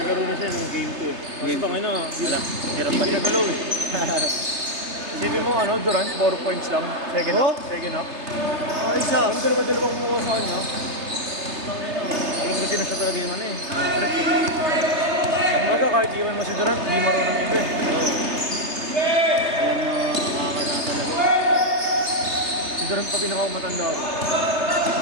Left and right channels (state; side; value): late; left; 3.3 ms